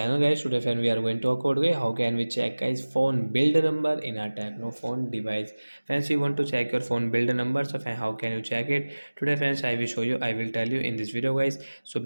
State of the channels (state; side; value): inverted; both; correlation -1.00